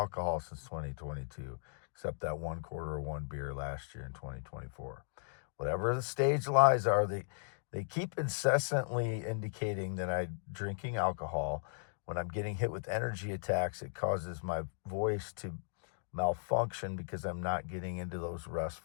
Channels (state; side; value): silent; right; digital silence